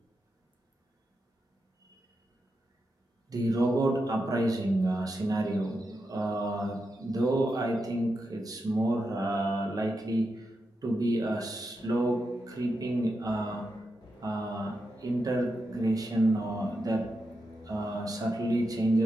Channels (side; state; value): both; normal; correlation 0.87